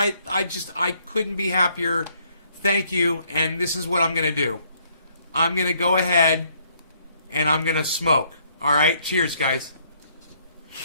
couldn't be happier. Thank you. And this is what I'm going to do. I'm going to go ahead and I'm going to smoke. All right, cheers, guys.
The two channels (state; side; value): inverted; both; correlation -0.67